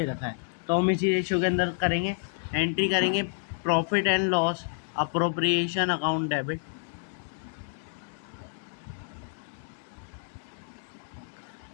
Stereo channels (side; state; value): right; silent; digital silence